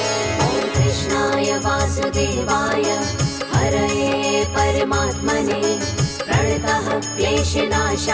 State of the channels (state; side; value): identical; both; correlation 1.00